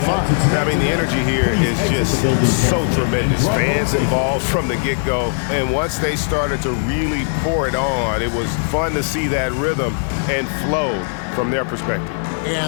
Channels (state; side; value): silent; right; digital silence